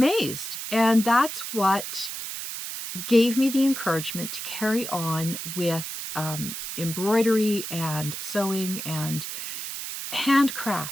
And that's what gave me the encouragement to carry on with embroidery and sewing and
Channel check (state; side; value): noise; right; hiss, 7 dB below the sound